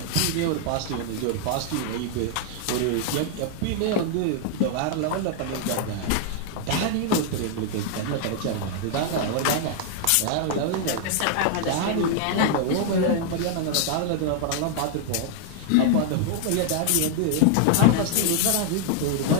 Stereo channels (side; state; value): both; different; correlation 0.00